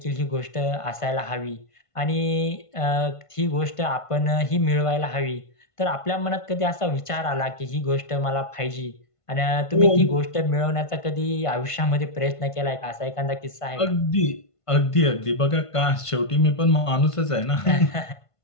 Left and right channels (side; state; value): right; late; 1.5 ms